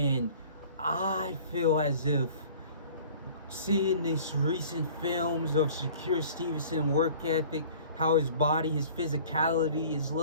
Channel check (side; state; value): both; inverted; correlation -0.47